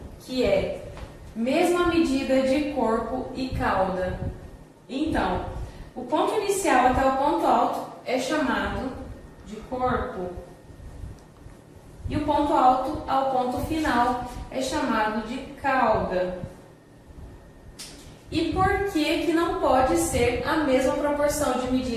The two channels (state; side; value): identical; both; correlation 1.00